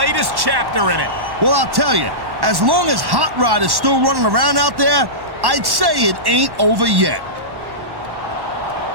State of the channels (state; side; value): late; left; 1.1 ms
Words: chapter in it. Well, I'll tell you, as long as Hot Rod is still running around out there, I'd say it ain't over yet.